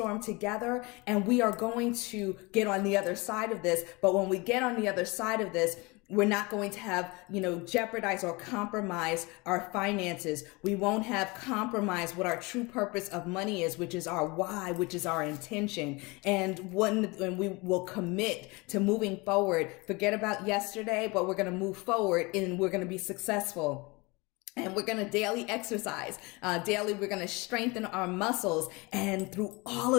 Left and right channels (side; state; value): right; quieter; 25.7 dB